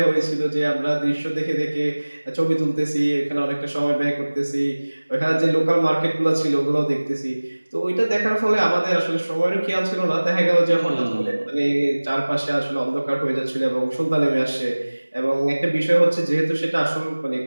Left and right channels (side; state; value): both; inverted; correlation -1.00